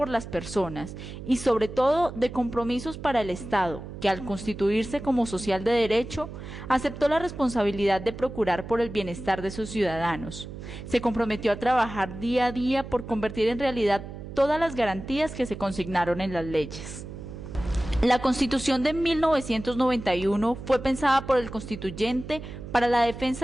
las personas y sobre todo de compromisos para el Estado, que al constituirse como social de derecho, aceptó la responsabilidad de procurar por el bienestar de sus ciudadanos. Se comprometió a trabajar día a día por convertir en realidad todas las garantías que se consignaron en las leyes. La Constitución de 1991 fue pensada por el constituyente para la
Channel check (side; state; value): right; noise; hum, 11 dB below the sound